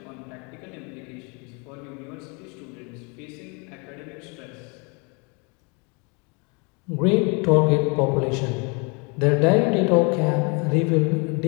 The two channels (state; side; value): quieter; right; 32.2 dB